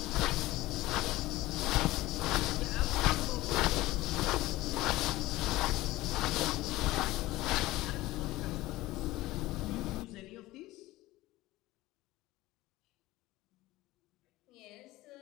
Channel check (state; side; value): quieter; right; 18.1 dB